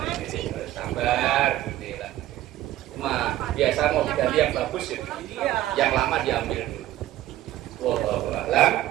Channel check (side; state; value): left; quieter; 14.3 dB